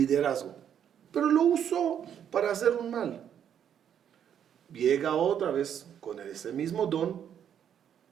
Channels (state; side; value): quieter; left; 9.0 dB